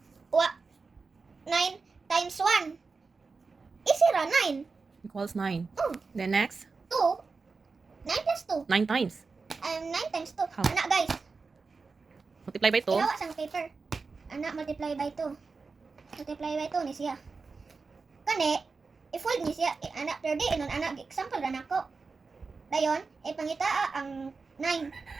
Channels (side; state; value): left; quieter; 4.4 dB